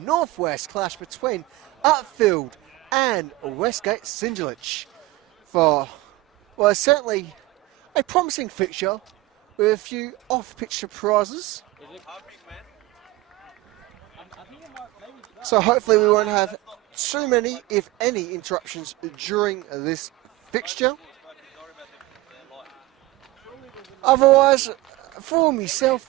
Northwest clash between Upfield and Westgate SC for, well, certainly a promising fixture with a few off-pitch surprises. So hopefully we won't have too many, if any, interruptions during this fixture. Otherwise, for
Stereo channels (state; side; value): quieter; left; 19.6 dB